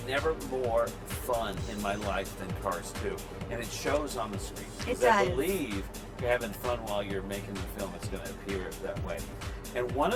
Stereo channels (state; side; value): identical; both; correlation 1.00